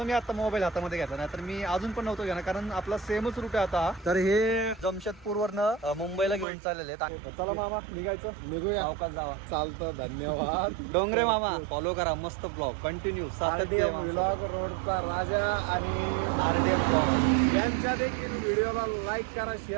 मी आता मोबाईल हातामध्ये घेतला, नाही तर मी अजून पण नव्हतो घेणार, कारण आपला सेमच रूट आहे आता. तर हे जमशेदपूरवरनं मुंबईला घेऊन चाललेले आहेत. चला मामा निघायचं, निघूया. अवकाश जावा. चालतं, धन्यवाद. डोंगरे मामा फॉलो करा, मस्त ब्लॉग कंटिन्यू. RDM व्लॉग रोडचा राजा आणि RDM ब्लॉग यांच्या देखील व्हिडिओला लाईक करा,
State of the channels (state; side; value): drops out; left; at 6.5 s